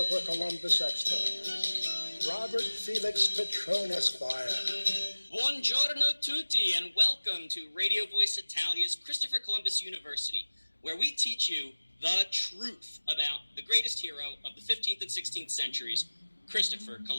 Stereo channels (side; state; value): both; inverted; correlation -1.00